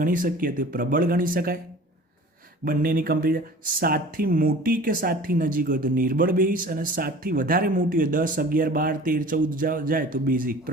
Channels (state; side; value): normal; both; correlation 0.43